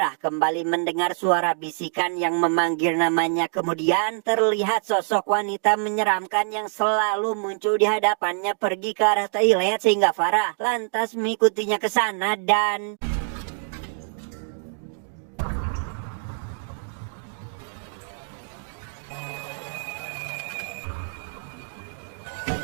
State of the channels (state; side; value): silent; left; 61 dB below the other